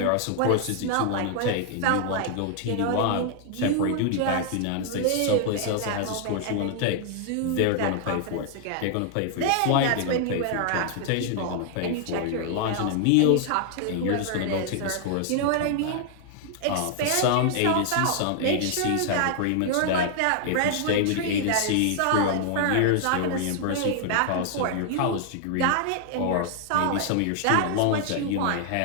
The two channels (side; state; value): both; different; correlation 0.00